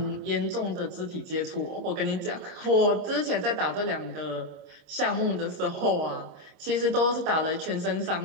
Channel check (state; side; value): late; left; 26 ms